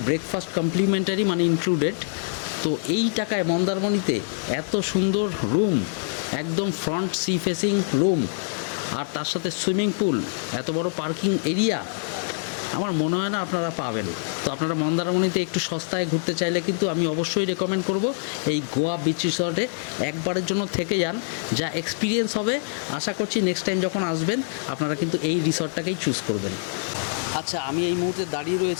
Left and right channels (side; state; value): right; silent; 62 dB below the other